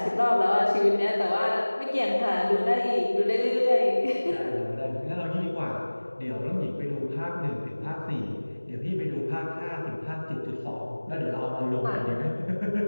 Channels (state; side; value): inverted; both; correlation -1.00